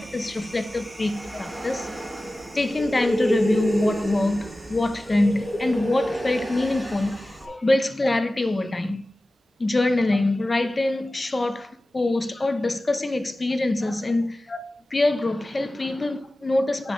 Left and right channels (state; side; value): normal; both; correlation 0.96